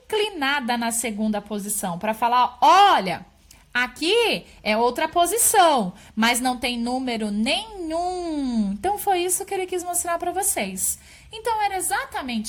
na segunda posição, para falar, olha, aqui é outra posição, mas não tem número nenhum. Então, foi isso que ele quis mostrar para vocês. Então, era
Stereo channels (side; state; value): both; identical; correlation 1.00